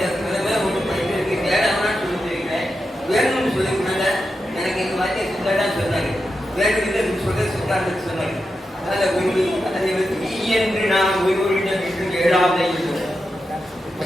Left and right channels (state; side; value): normal; both; correlation 0.88